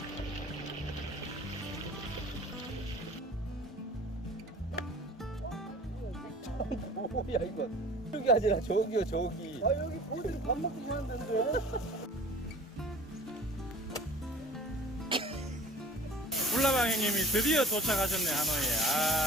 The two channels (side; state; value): both; normal; correlation 0.45